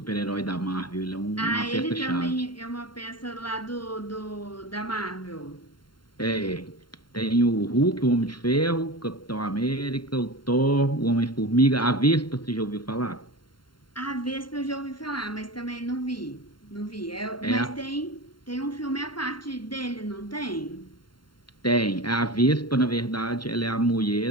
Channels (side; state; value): right; late; 0.72 ms